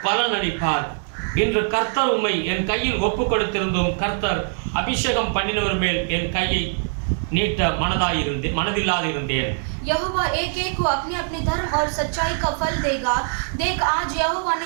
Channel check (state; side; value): silent; left; 64 dB below the other